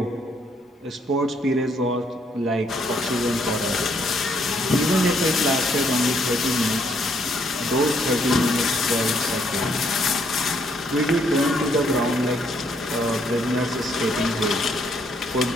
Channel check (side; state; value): both; normal; correlation 0.70